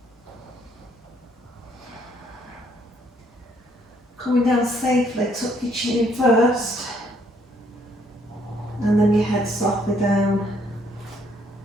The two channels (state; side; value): normal; both; correlation 0.67